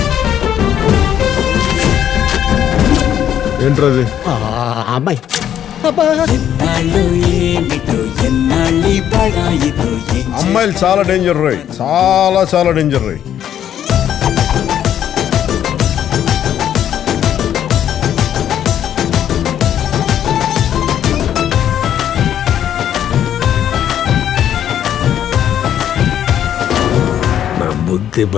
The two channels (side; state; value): right; quieter; 10.3 dB